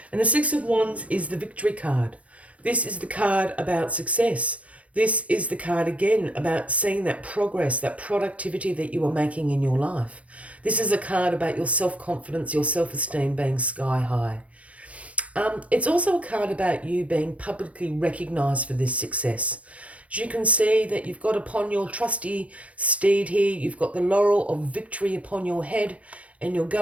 And the Six of Wands is the victory card. This is the card about success. This is the card, again, about seeing that progress, that productivity that you are making in your life. This is a card about your self-confidence, your self-esteem being sky high. It's also a card about you being publicly recognised for this success. As you can see that you've got upon your trusty steed here, you've got the laurel of victory upon your head, and you're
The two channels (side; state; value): left; late; 0.064 ms